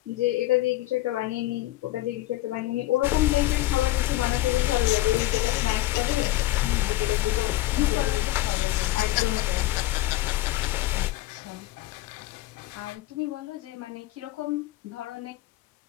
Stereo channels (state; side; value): quieter; right; 16.6 dB